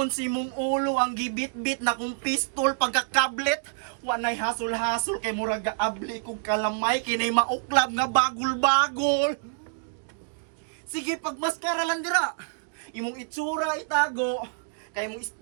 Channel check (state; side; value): silent; left; digital silence